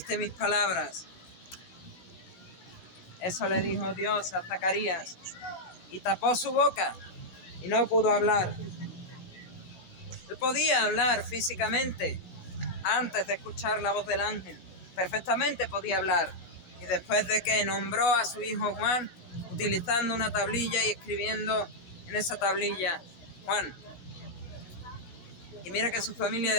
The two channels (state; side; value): late; right; 16 ms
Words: mis palabras. Eso le dijo Dios a Zacarías, y tapó su boca y no pudo hablar. Él podía hablar físicamente antes de escuchar la voz del ángel, perfectamente podía hablar, y después de que nombró a su hijo Juan, utilizando una tablilla y escribiendo en esa tablilla: Juan. Y mira que su familia